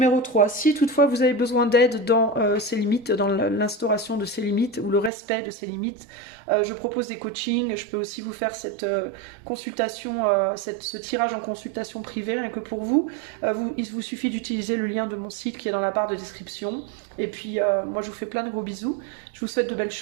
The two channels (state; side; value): drops out; left; at 5.1 s